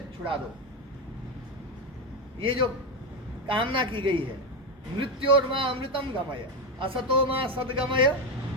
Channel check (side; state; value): both; normal; correlation 0.11